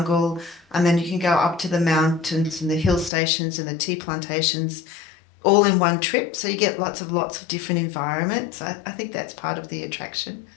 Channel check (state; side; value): drops out; right; at 3.1 s